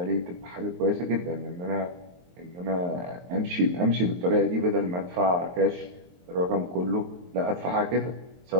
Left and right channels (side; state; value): left; late; 23 ms